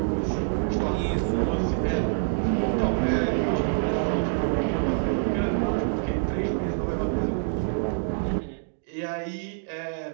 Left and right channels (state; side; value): silent; left; digital silence